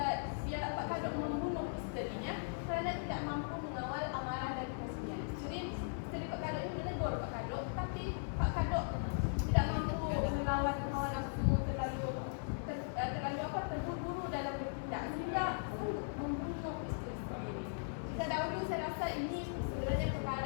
dia Pak Kado membunuh isterinya kerana tidak mampu mengawal amarah dan kasihnya. Jadi isteri Pak Kado ini menegur Pak Kado, tapi Pak Kado tidak mampu melawan hawa nafsu, terlalu terburu-buru dalam bertindak sehingga sanggup membunuh isteri sendiri. Jika dahulu saya rasa ini sebenarnya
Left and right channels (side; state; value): right; silent; digital silence